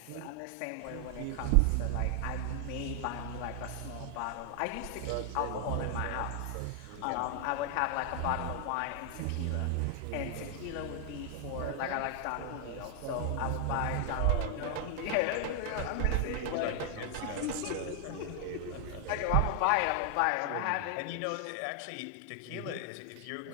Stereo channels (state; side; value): different; both; correlation 0.00